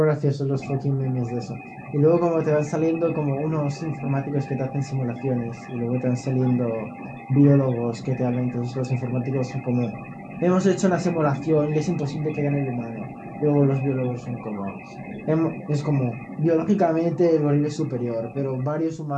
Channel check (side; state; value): both; identical; correlation 1.00